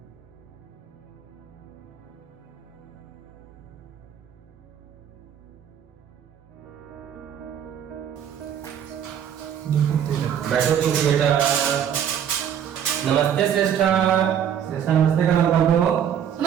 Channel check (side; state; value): left; quieter; 9.0 dB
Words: बैठो तुम बेटा। नमस्ते श्रेष्ठा। श्रेष्ठा नमस्ते करना बाबू।